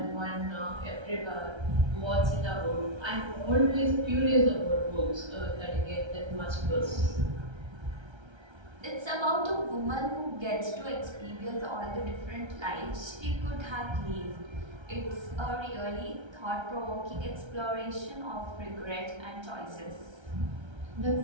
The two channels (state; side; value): late; left; 1.3 ms